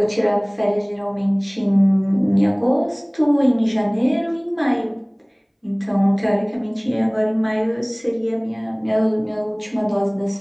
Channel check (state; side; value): identical; both; correlation 1.00